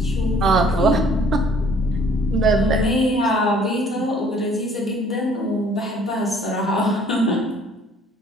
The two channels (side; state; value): both; normal; correlation 0.58